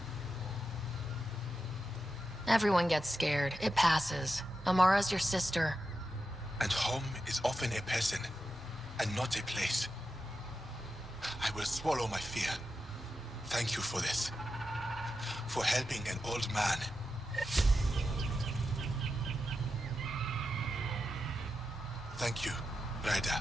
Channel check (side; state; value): both; normal; correlation 0.89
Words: Everyone gets scared. It passes. Amara's your sister. And home is often a person, and not a place. I will swallow my fear. Thank you for this. For helping an old man. Thank you,